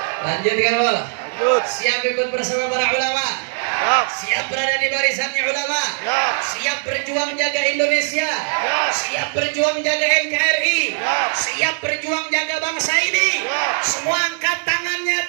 Lanjut kamu. Lanjut. Siap ikut bersama para ulama. Siap. Siap berada di barisannya ulama. Siap. Siap berjuang jaga Indonesia. Siap. Siap berjuang jaga NKRI. Siap. Siap berjuang jaga bangsa ini. Siap. Semua angkat tangannya,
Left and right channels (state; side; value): silent; left; digital silence